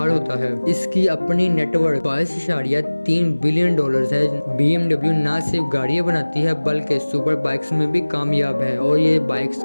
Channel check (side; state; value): both; inverted; correlation -1.00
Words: होता है। इसकी अपनी नेटवर्क 22.3 बिलियन डॉलर है। BMW न सिर्फ गाड़ियाँ बनाती है बल्कि सुपर बाइक्स में भी कामयाब है और ये बाइक्स